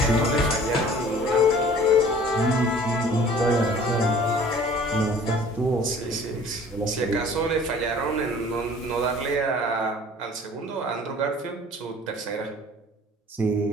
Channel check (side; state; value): both; normal; correlation 0.49